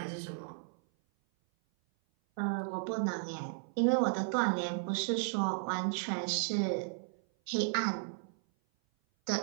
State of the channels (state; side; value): silent; left; 55 dB below the other